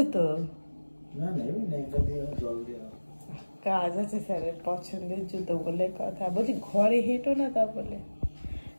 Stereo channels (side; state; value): both; inverted; correlation -1.00